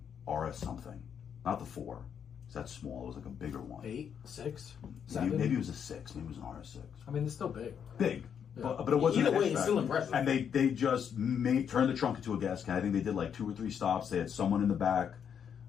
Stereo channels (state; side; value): quieter; right; 7.8 dB